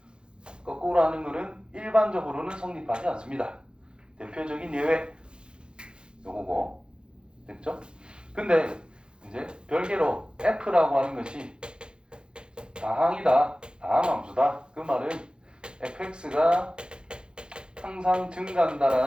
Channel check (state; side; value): late; left; 0.050 ms